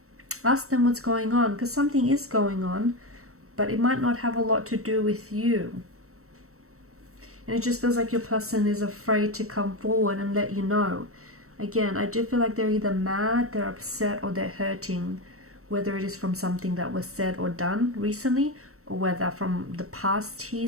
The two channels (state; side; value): late; left; 0.64 ms